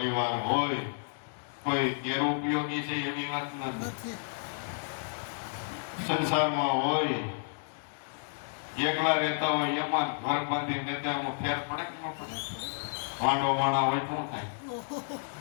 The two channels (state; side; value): silent; right; digital silence